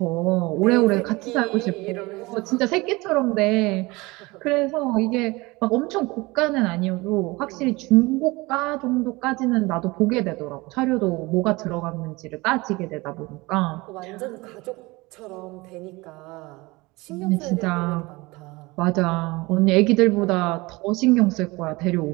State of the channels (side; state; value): left; quieter; 22.8 dB